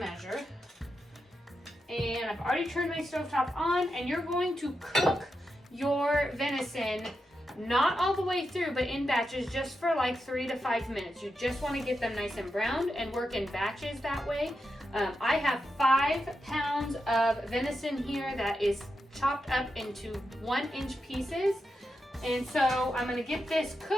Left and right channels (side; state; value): both; normal; correlation 0.87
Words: And I've already turned my stovetop on, and you're going to cook your venison, not all the way through, but in batches, just for like 3 to 5 minutes. You just want to get them nice and browned and work in batches that way. I have 5 pounds of venison here that is chopped up into 1-inch pieces. And so I'm gonna get this